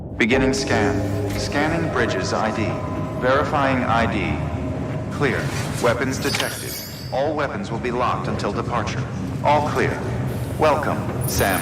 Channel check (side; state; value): both; identical; correlation 1.00